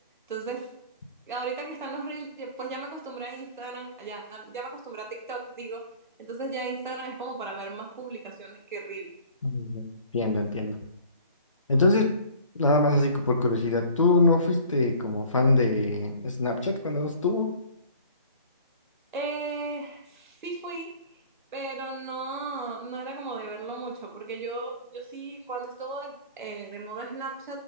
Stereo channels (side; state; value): both; inverted; correlation -0.49